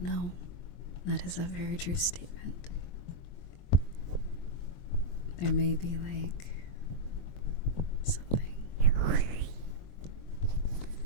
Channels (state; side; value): late; right; 23 ms